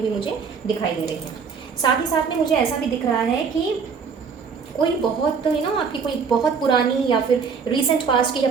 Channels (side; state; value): left; quieter; 5.8 dB